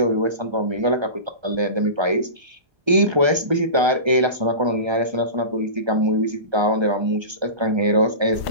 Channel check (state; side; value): late; left; 1.3 ms